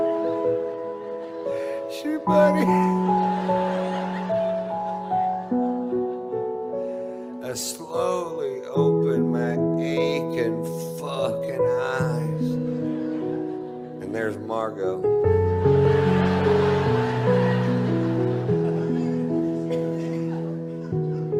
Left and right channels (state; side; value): identical; both; correlation 1.00